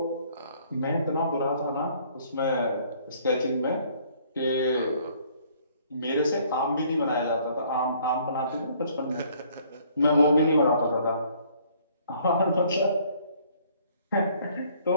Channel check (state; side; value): inverted; both; correlation -0.61